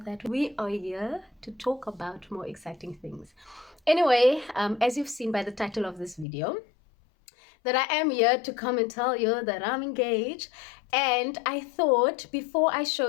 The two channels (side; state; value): right; drops out; at 6.2 s